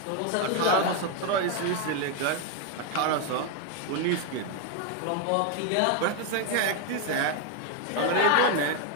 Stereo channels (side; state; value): both; different; correlation 0.01